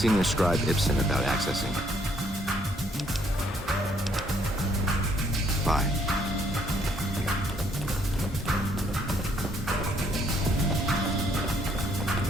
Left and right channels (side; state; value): both; normal; correlation 0.67